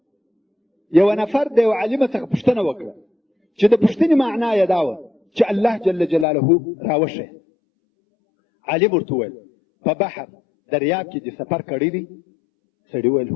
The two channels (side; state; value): right; drops out; at 6.2 s